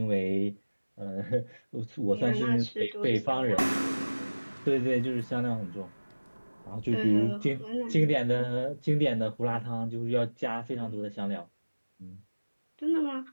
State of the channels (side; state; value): both; inverted; correlation -1.00